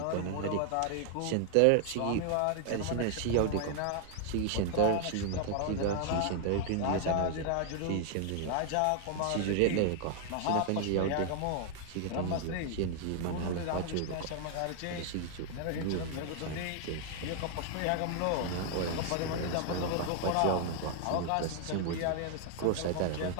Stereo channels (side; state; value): both; different; correlation 0.00